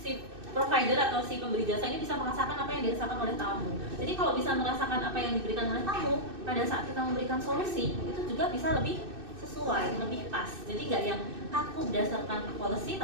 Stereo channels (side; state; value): left; late; 2.6 ms